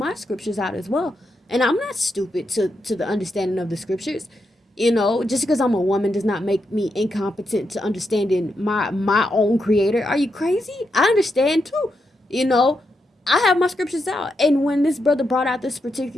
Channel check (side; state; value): both; normal; correlation 0.84